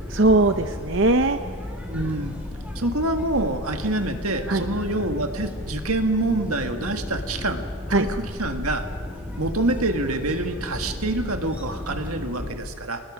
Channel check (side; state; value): both; normal; correlation 0.26